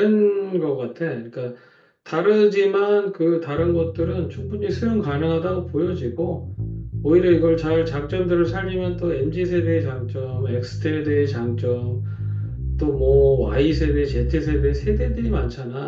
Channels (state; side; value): identical; both; correlation 1.00